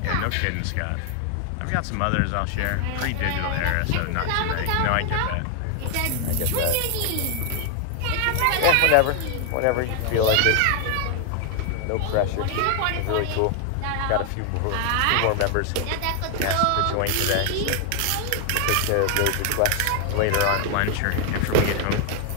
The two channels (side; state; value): both; different; correlation 0.00